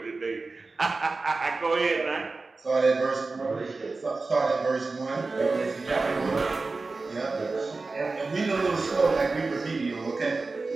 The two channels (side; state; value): left; quieter; 3.8 dB